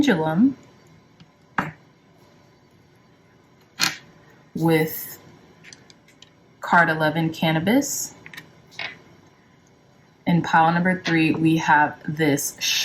with card 11, cannabis. In pile number 3, we have this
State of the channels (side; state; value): both; identical; correlation 1.00